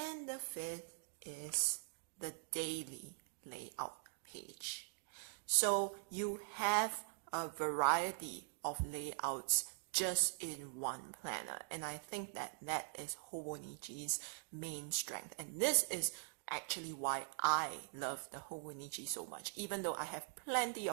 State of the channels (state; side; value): silent; left; digital silence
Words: the fifth is the daily layout page. So you have a variety of layouts just in one planner, and I think that is Hobonichi's main strength, and this is actually why I love the Hobonichi so much. Even though I have plenty